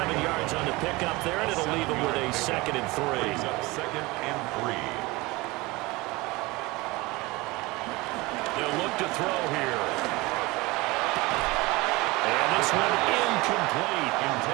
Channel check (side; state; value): left; quieter; 22.3 dB